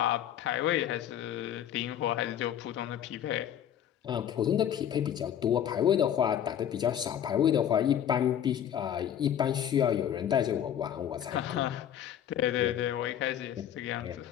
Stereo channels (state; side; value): quieter; right; 9.9 dB